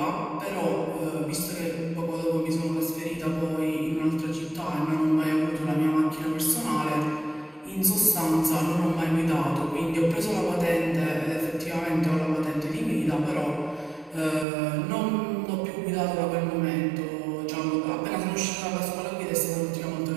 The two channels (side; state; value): left; drops out; at 14.5 s